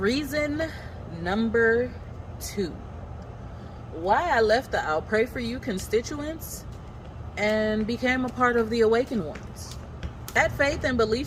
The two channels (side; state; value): both; identical; correlation 1.00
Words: number 2. Why I left the I'll Pray For You constituents and became a part of the Awakened Ones. That faith and